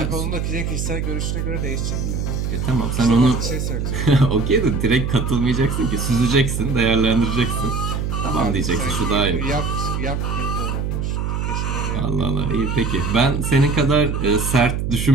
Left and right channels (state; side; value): noise; right; hum, 1 dB below the sound